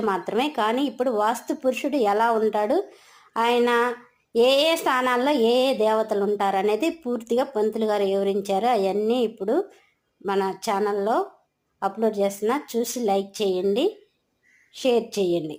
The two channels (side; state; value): both; identical; correlation 1.00